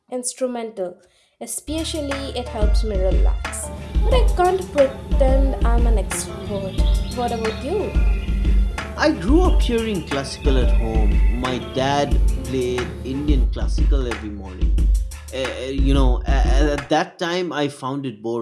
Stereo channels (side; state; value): both; identical; correlation 1.00